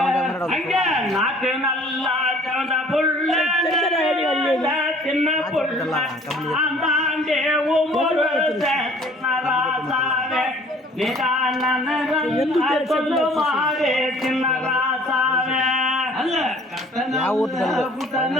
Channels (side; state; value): both; normal; correlation 0.53